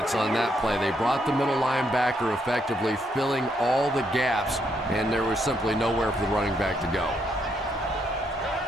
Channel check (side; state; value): both; normal; correlation 0.75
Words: on that play. They brought the middle linebacker effectively filling all the gaps, and there was simply nowhere for the running back to go.